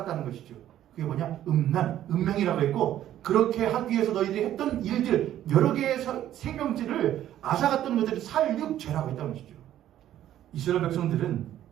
것이죠. 그게 뭐냐? 음란, 음행이라고 했고, 그렇게 하기 위해서 너희들이 했던 일들, 여러 개의 생명질을 앗아갔던 것들을 살육죄라고 했다는 것이죠. 이스라엘 백성들은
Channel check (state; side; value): quieter; left; 12.1 dB